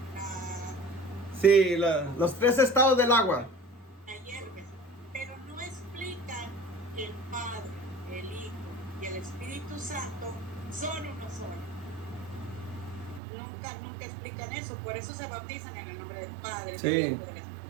Sí, los 3 estados del agua. la hierves, pero no explican que el Padre, el Hijo y el Espíritu Santo son uno solo. Nunca explican eso, por eso se bautizan en el nombre del Padre, Sí. del Hijo y del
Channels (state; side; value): drops out; left; at 13.2 s